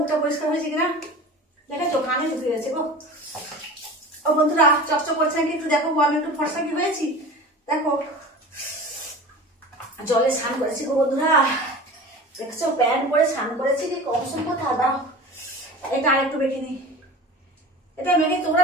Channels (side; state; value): both; normal; correlation 0.36